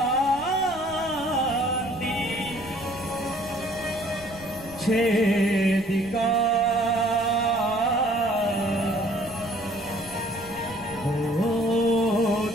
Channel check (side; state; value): left; noise; rumble, 18 dB below the sound